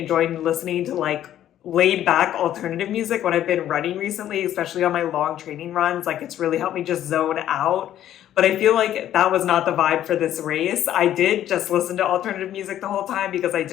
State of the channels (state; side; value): quieter; right; 11.7 dB